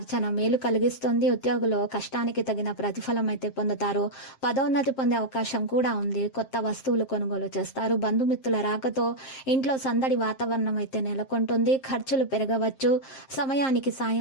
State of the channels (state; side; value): late; right; 7.6 ms